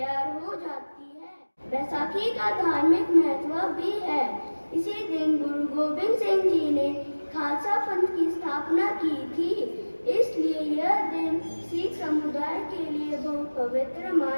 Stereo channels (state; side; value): inverted; both; correlation -1.00